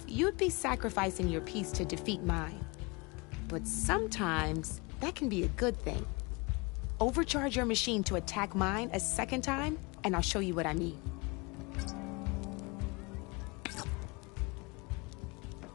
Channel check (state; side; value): quieter; right; 27.6 dB